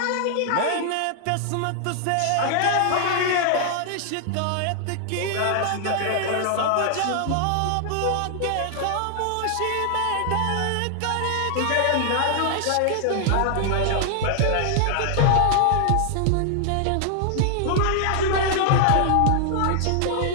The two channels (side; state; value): both; different; correlation 0.00